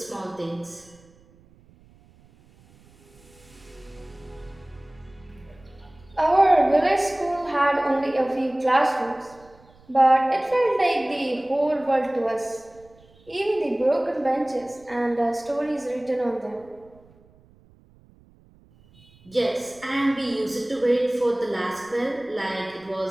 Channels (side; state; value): right; noise; rumble, 28 dB below the sound